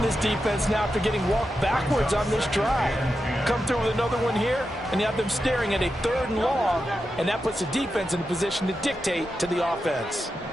this defense now after getting walked backwards on this drive. Come through with another one here, and you have them staring at a 3rd and long, and that puts the defense in a position to dictate to the offense.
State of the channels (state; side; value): normal; both; correlation 0.89